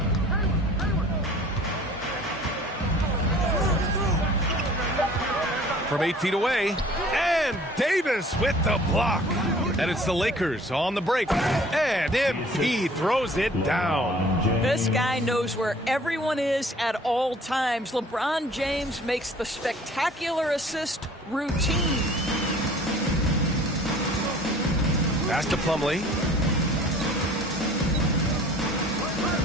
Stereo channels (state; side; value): normal; both; correlation 0.50